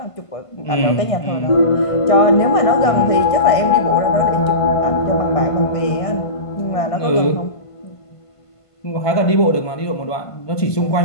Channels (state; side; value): late; right; 1.5 ms